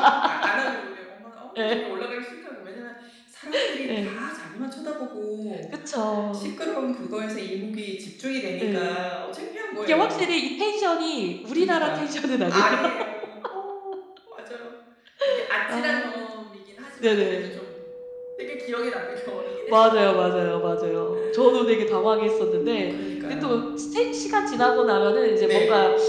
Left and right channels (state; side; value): identical; both; correlation 1.00